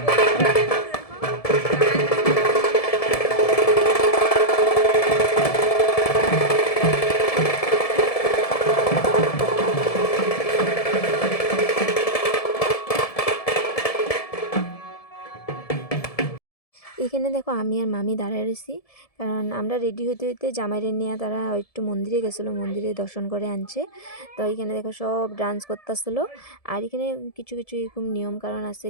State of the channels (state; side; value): late; right; 1.7 ms